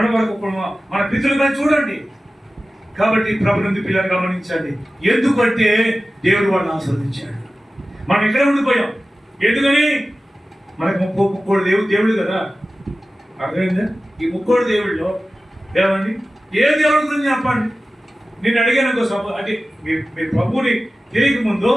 వరకు మన పితృలుగా చూడండి. కాబట్టి ప్రభునందు పిల్లలు గమనించండి. ఎందుకంటే దేవుడు వాళ్ళని ఆశీర్వదించాడు. మనం ఇక్కడే ఉండిపోయాం. ఎందుకని? మనకు 30 దేవుడు కదా. అర్థమైందా? ఈ 30 దేవుళ్ళలో ఏమండి ఏ దేవుడి గురించి చెప్పండి. నేను అడిగాను అంటే మీ ప్రభుని తెలియక ముందు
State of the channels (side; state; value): both; normal; correlation 0.95